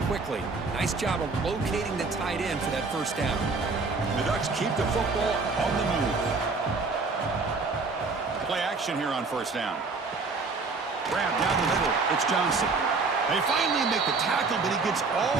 quickly. Nice job of locating the tight end for that first down. The Ducks keep the football on the move. Play action here on first down. Grab down the middle. It's Johnson. They finally make the tackle, but he gets all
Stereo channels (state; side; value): quieter; left; 4.1 dB